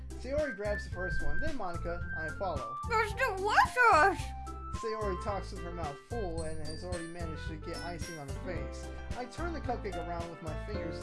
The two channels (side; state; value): both; identical; correlation 1.00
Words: Sayori grabs the first one, then Monica, I follow. There's delicious! Sayori talks with her mouth full and has already managed to get icing on her face. I turn the cupcake around with my